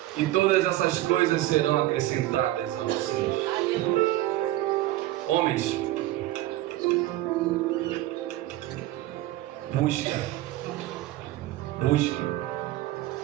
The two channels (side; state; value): left; quieter; 15.8 dB